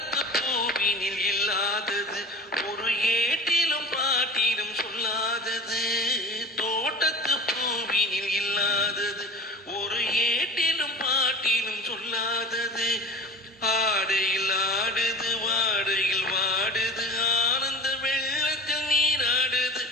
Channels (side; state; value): both; normal; correlation 0.36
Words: பூவினில் இல்லாதது, ஒரு ஏட்டிலும் பாட்டிலும் சொல்லாதது. தோட்டத்து பூவினில் இல்லாதது, ஒரு ஏட்டிலும் பாட்டிலும் சொல்லாதது. ஆடையில் ஆடுது, வாடையில் வாடுது, ஆனந்த வெள்ளத்தில் நீராடுது.